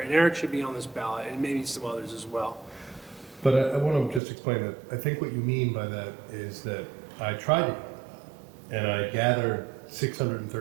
Eric should be on this ballot, and maybe some others as well. But I want to just explain that I think what you mean by that is that I tried it, and I gathered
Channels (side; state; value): left; drops out; at 4.2 s